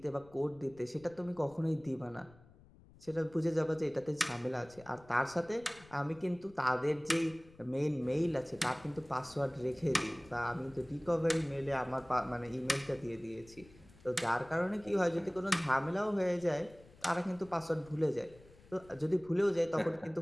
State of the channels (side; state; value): left; noise; rumble, 24 dB below the sound